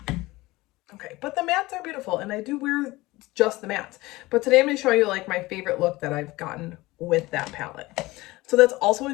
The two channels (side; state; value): right; quieter; 20.1 dB